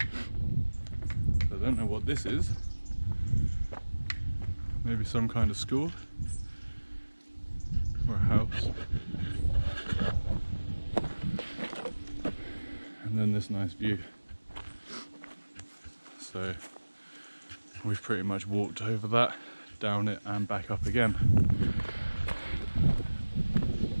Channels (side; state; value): both; inverted; correlation -1.00